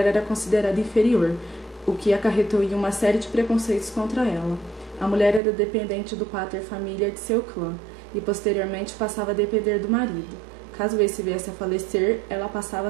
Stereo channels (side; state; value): left; drops out; at 5.4 s